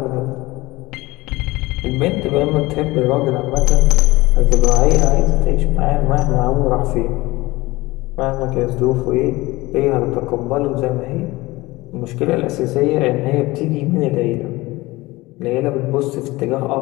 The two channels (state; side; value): quieter; right; 20.5 dB